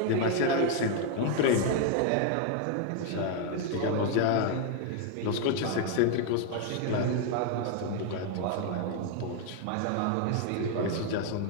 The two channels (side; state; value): both; different; correlation 0.00